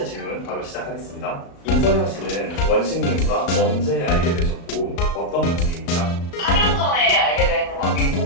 질문 바로 시작하겠습니다. 임선양 씨는 원식님과 언제 알게 되셨고 어떤 관계입니까? 4년 전에 알게 된 관계고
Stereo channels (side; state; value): right; late; 35 ms